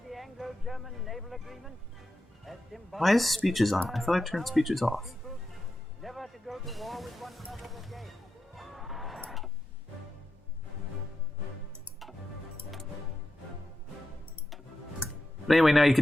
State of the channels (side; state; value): both; normal; correlation 0.89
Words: the Anglo-German naval agreement as symbolic. Why is speeches on? I thought I turned speeches off. Never to go to war with one another again. But anyway, now you